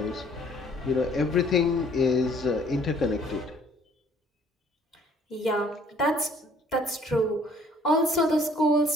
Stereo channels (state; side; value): normal; both; correlation 0.59